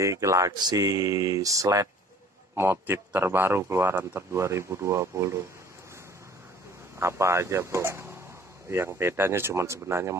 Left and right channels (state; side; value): normal; both; correlation 0.51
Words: Galaxy Sled motif terbaru keluaran 2020. Apa aja bro? Yang bedanya cuman sebenarnya